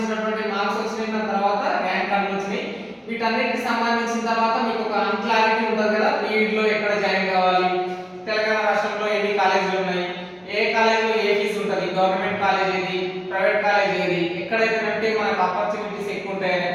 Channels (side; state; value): both; identical; correlation 1.00